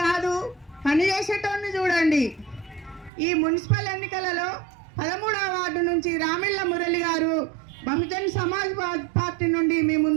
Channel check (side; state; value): left; drops out; at 3.1 s